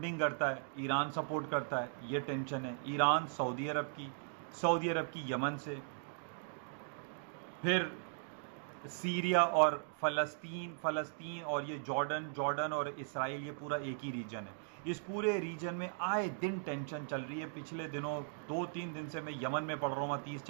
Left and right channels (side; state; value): left; silent; digital silence